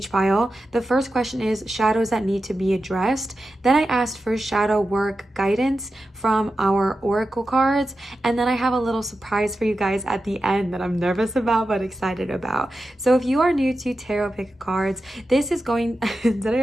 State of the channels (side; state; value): both; normal; correlation 0.91